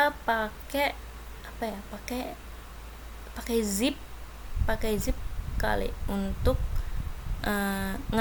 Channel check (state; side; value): identical; both; correlation 1.00